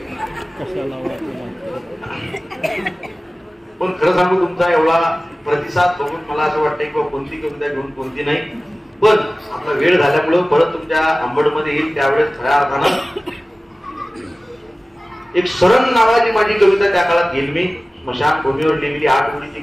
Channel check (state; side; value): normal; both; correlation 0.97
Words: पण खरं सांगू, तुमचा एवढा प्रतिसाद बघून मला असं वाटतंय की कोणती कविता घेऊन कोणती नाही. पण आपला वेळ झाल्यामुळं परत तुमच्या अंबडमध्ये येईल. त्यावेळेस खऱ्या अर्थानं एक शरण नावाची माझी कविता त्या काळात घेईल मी. स्मशानभूमीवर लिहिलेली 8 ओळीची